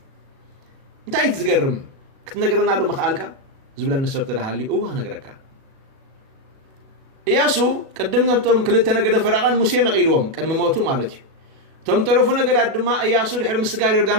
እንታይ እቲ ዝገርም ክትነግረና ዶ መኽኣልካ ዝብለኒ ሰብ ተዳሃልዩ እዋ ነገረካ ኢያሱ ቅድም ነብቶም ክልተ ነገደ ፈራቓን ሙሴ መቒልዎም ቅድሚ ሞቱ ማለት እዩ እቶም ተረፉ ነገዳት ድማ ኢያሱ ድሕሪ ምስጋር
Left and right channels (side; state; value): left; late; 37 ms